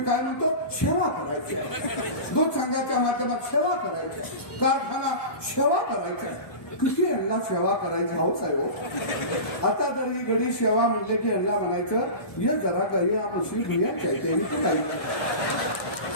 काय म्हणतो, सेवा करायची आहे. दूध संघाच्या माध्यमात सेवा करायची, कारखाना सेवा करायचा. किती यांना सेवा करायची हौस आहे हो. आता जर ही गडी सेवा म्हणले की यांना म्हणायचं ये जरा काही म्हशी भुयाच्या काही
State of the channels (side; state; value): right; late; 1.2 ms